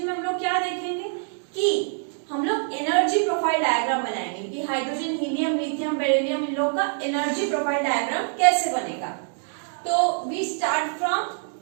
में हम लोग क्या देखेंगे कि हम लोग एनर्जी प्रोफाइल डायग्राम बनाएंगे कि हाइड्रोजन, हीलियम, लिथियम, बेरिलियम इन लोगों का एनर्जी प्रोफाइल डायग्राम कैसे बनेगा। तो we start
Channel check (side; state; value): left; silent; 62 dB below the other